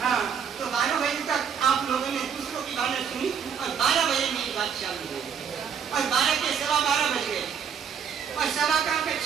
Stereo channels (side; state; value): left; quieter; 7.2 dB